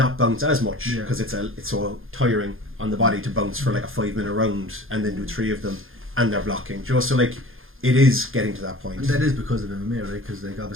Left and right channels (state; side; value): late; left; 0.60 ms